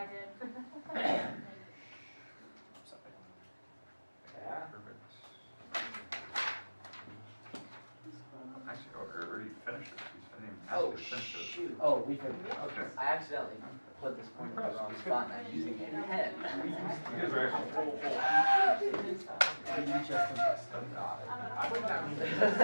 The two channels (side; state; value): both; inverted; correlation -1.00